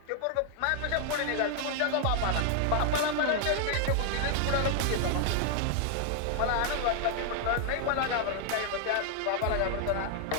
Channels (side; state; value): both; different; correlation 0.00